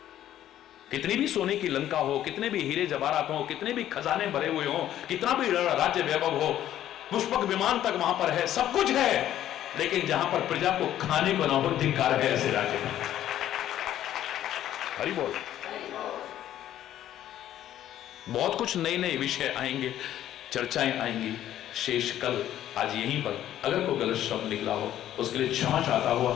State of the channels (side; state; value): right; quieter; 12.0 dB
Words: कितनी भी सोने की लंका हो, कितने भी हीरे जवाहरात हो, कितने भी खजाने भरे हुए हो, कितना भी राज्य वैभव हो, पुष्पक विमान तक वहां पर है, सब कुछ है, लेकिन जहां पर प्रजा को खाने को ना हो, धिक्कार है ऐसे राज्य में। हरि बोल। बहुत कुछ नए नए विषय आएंगे, चर्चाएं आएंगी। शेष कल आज यहीं पर अगर कोई गलत शब्द निकला हो उसके लिए क्षमा चाहता हुआ